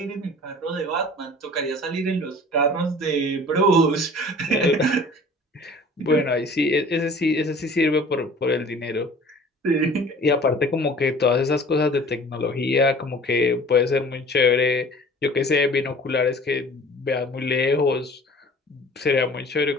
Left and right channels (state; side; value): normal; both; correlation 0.47